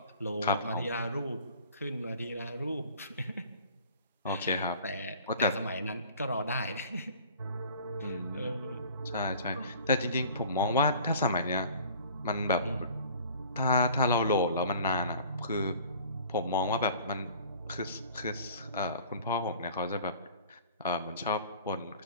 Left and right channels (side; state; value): both; inverted; correlation -0.48